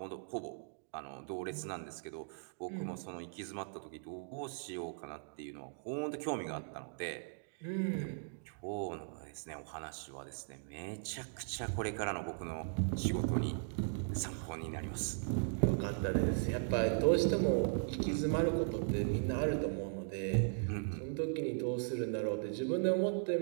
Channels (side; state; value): left; silent; digital silence